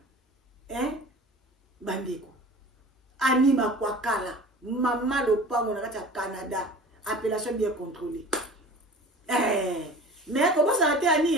bandeko anima kwa kala mama lopango na kati ya Canada appellation bien contrôlée mais comment ça a été ani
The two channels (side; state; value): both; normal; correlation 0.40